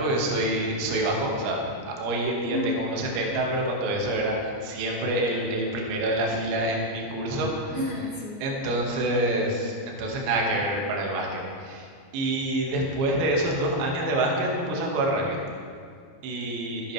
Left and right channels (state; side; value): late; left; 30 ms